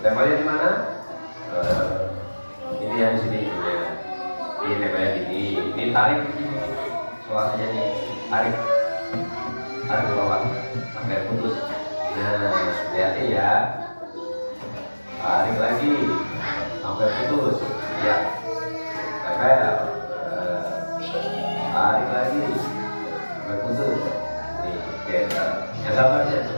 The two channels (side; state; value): both; inverted; correlation -1.00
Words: tempelnya di mana? Ini yang sini ya. Ini tempelnya gini. Ini tarik di sini. Suasanya nih, tarik ke bawah sampai putus. Nah, hati-hati ya. Tarik lagi sampai putus. Ya. Tempel. Tarik lagi sampai putus. Nih, yang gambarnya